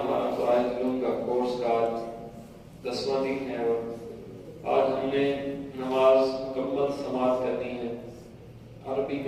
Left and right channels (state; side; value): identical; both; correlation 1.00